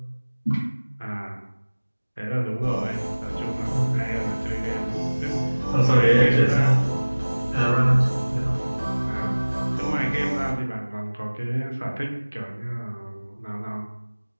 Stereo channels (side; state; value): both; inverted; correlation -1.00